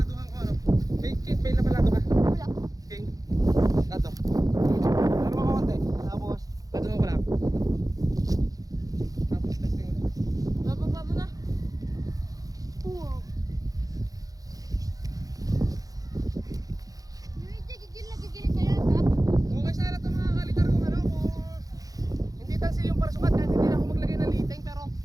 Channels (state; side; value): late; left; 0.17 ms